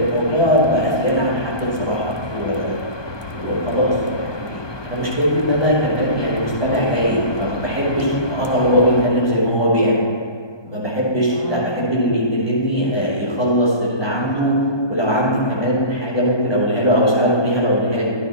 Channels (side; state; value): right; late; 1.2 ms